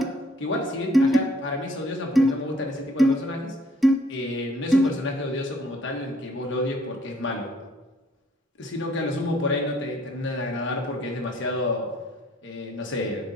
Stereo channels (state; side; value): normal; both; correlation 0.61